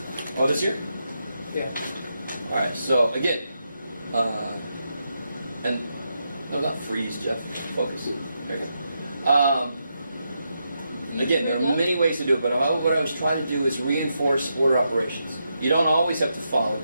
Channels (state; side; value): inverted; both; correlation -0.84